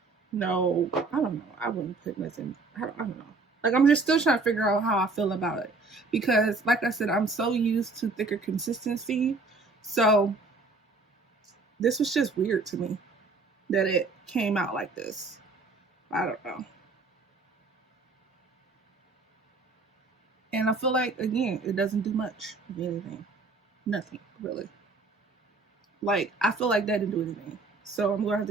no, I don't know. I wouldn't put nothing. I don't know. Like, I'm just still trying to figure out how I feel about it because, like I said, I'm so used to thicker consistency. So this was just weird to me that it came out like this. I don't know. And I feel like, again, it doesn't do much of anything. Nothing, really. Like, I feel like that didn't do anything. So I'm going to have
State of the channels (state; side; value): quieter; left; 3.7 dB